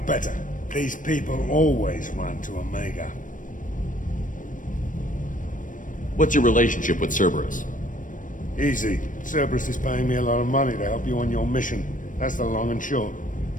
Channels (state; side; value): late; right; 0.38 ms